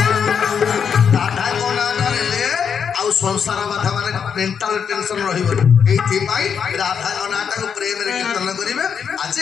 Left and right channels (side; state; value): right; quieter; 7.1 dB